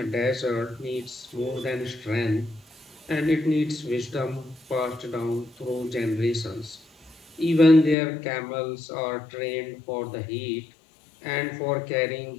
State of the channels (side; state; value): right; drops out; at 8.0 s